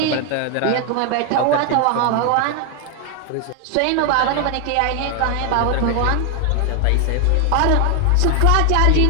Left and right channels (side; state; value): both; different; correlation 0.01